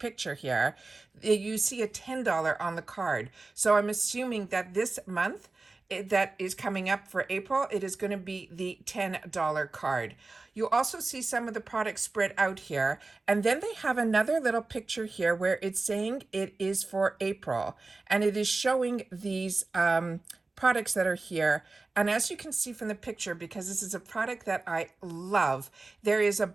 here, you see a $10 on the card. So I'm assuming that this month, that is coming up for April, it is going to be the $10 card. You also see some of the products spread out here, and then they have another little picture here where it's saying it is for April, and it is showing these products that are here. And as you can see from the picture, because this is a product that I love, there is a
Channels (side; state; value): left; quieter; 3.5 dB